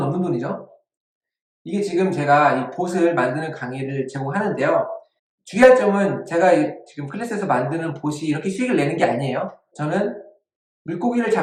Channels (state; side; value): identical; both; correlation 1.00